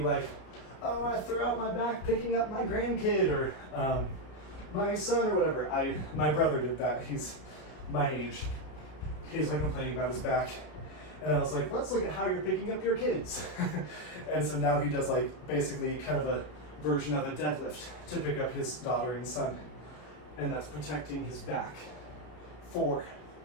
like, oh, I threw out my back picking up my grandkid or my son or whatever. My brother did that. He's my age. He's like complaining about his back. And I was like, let's look at how you're picking up your kids. And so now he does like basically kind of a version of a deadlift to pick up his daughter and son. And that's protecting his back. 4,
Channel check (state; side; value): late; right; 33 ms